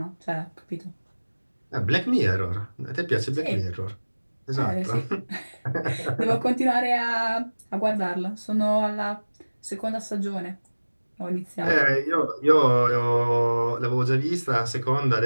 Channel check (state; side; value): inverted; both; correlation -1.00